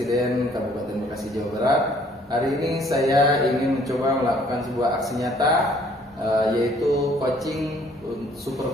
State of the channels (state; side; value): normal; both; correlation 0.60